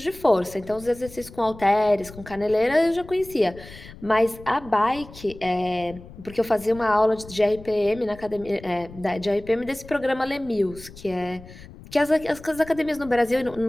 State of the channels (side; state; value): left; noise; rumble, 18 dB below the sound